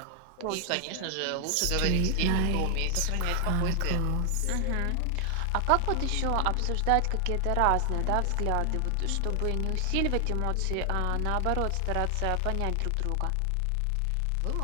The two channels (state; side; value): different; both; correlation 0.00